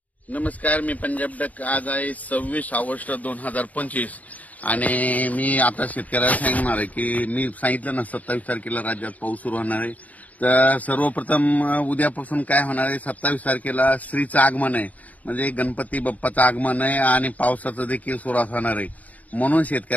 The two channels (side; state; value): right; late; 0.074 ms